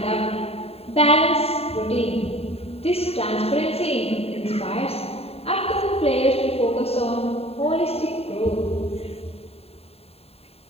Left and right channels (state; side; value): late; right; 0.29 ms